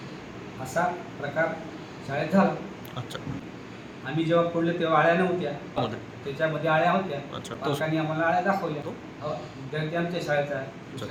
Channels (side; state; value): both; identical; correlation 1.00